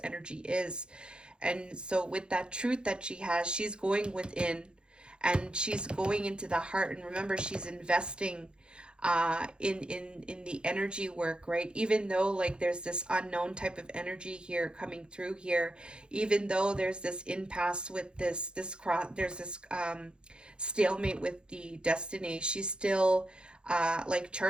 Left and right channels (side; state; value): left; late; 0.051 ms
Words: energy is. And so, with that truth that she has, she's going within and she's going into the heart. And remember, she's investing in the energy work, right? Even though like there's this unknown type of energy here coming through here, even though there's this impasse with this cross, there's this stalemate with the destiny, she's still like